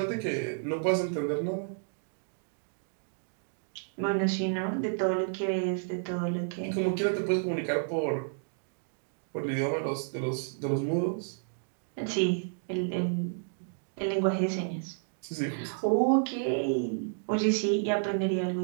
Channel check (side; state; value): left; silent; digital silence